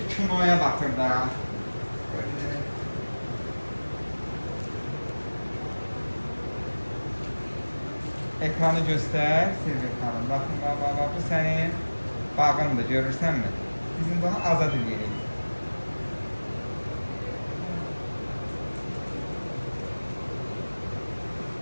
kinoya baxır da. Ekranı göstər, Silvia xanım. Baxın, bu sənin bağındır, görürsənmi? Bizim bunu azad edirik.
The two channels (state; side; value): inverted; both; correlation -1.00